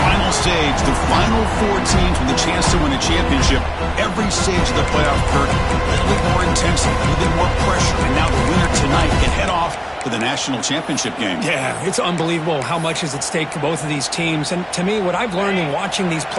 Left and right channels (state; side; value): identical; both; correlation 1.00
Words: stage. The final four teams with a chance to win a championship. Every stage of the playoff, Kurt, a little bit more intensity, a little bit more pressure. And now the winner tonight can head off to the national championship game. Yeah, it's unbelievable how much is at stake for both of these teams. And to me, what I've learned in watching these